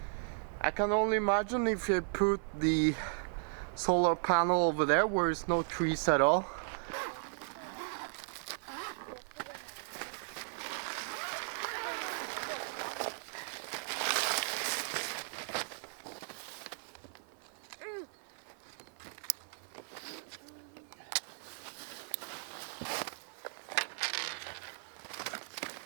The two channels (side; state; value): left; silent; 53 dB below the other